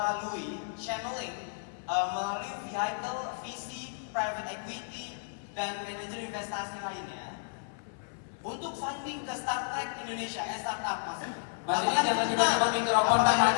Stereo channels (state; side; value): silent; right; 56 dB below the other